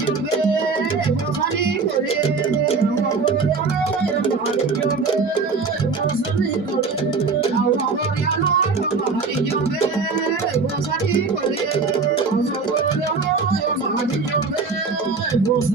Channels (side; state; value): left; quieter; 4.6 dB